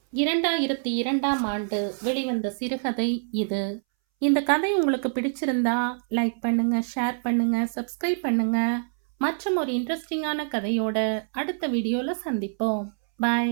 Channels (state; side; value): silent; left; 61 dB below the other